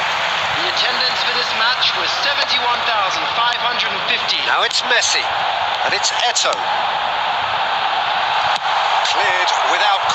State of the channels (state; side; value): identical; both; correlation 1.00